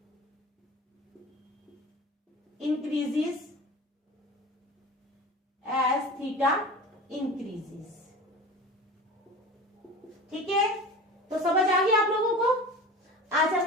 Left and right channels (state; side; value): normal; both; correlation 0.35